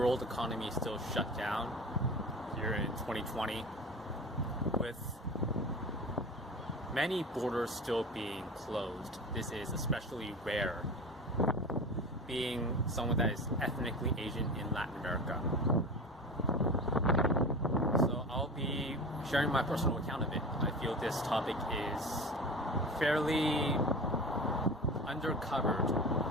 economy is still shut down here in 2020, with many borders still being closed. This is especially rare, being someone that is ethnically Asian in Latin America. So I'll be sharing my personal account of it. I feel this topic is fairly undercovered,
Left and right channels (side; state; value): both; normal; correlation 0.32